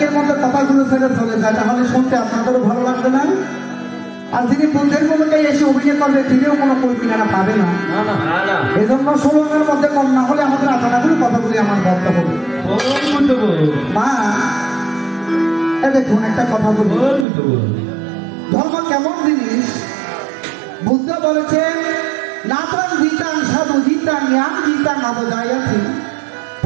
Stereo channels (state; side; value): drops out; left; at 17.2 s